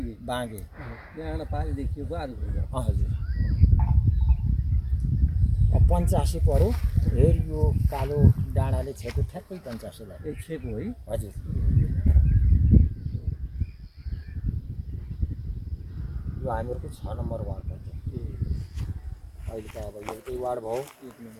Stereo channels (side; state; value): both; identical; correlation 1.00